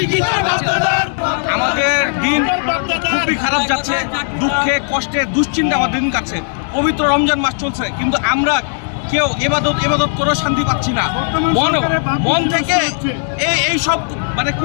আমাদের দিন খুবই খারাপ যাচ্ছে, দুঃখে কষ্টে দুশ্চিন্তা আমাদের দিন কাটছে। পবিত্র রমজান মাস চলছে, কিন্তু আমরা কেউ এবাদত করে শান্তি পাচ্ছি না। মন থেকে এই সব মানে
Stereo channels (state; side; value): silent; right; 59 dB below the other